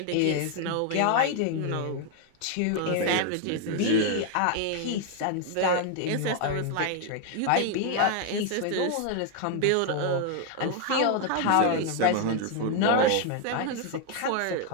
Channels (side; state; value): both; different; correlation 0.00